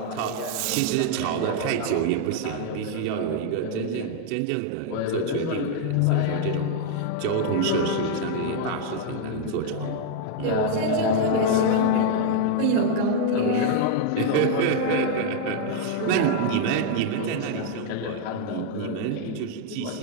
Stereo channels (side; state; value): both; different; correlation 0.00